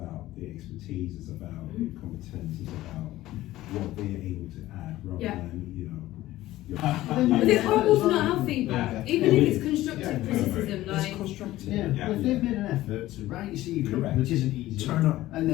the expertise, it's about the competence, it's about what they're able to add rather than, you know, But it's horrible to not have feedback, even if it's constructive criticism, like. it's constructive. Yeah, if they've made an effort to write your CV, Correct. which isn't easy, Turn up. and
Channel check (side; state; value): right; quieter; 15.9 dB